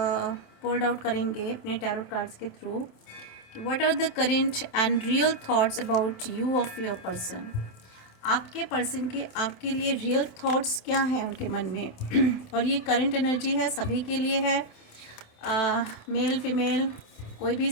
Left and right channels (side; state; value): right; late; 27 ms